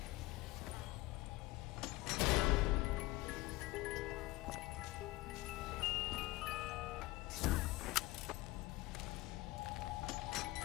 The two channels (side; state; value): right; quieter; 19.6 dB